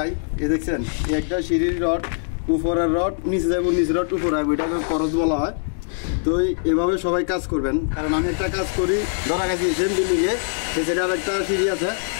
এই দেখছেন, এই একটা সিঁড়ির রড, উপরের রড নিচে যাবো, নিচে রড উপরে আসবো, এটাকে করজ বলা হয়। তো এভাবে সবাই কাজ করবেন, কারণ আমি একটা কাজ করি, ধরা গেছি সেম বিল্ডিংয়ে, সেটা আর একটা সিঁড়ি আছে,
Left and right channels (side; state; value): right; silent; digital silence